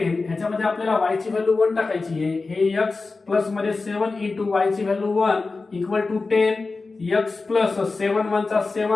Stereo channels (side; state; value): right; quieter; 3.9 dB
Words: ह्याच्यामध्ये आपल्याला y ची व्हॅल्यू 1 टाकायची आहे. हे x प्लस मध्ये 7 इंटू y ची value 1 equal to 10. x plus 7 1 चा